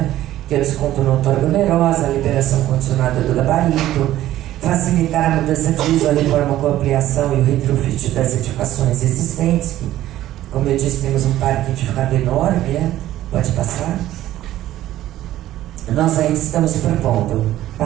Que é o desconto na outorga onerosa, a liberação condicionada do gabarito, facilitar a mudança de uso, a reforma com ampliação e o retrofit das edificações existentes, que, como eu disse, temos um parque edificado enorme, né? Pode passar. Nós ainda estamos propondo,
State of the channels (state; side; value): quieter; left; 13.9 dB